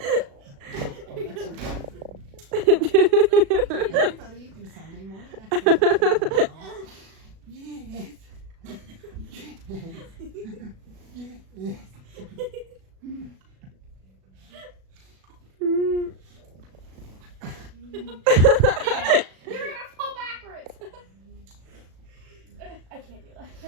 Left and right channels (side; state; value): left; late; 37 ms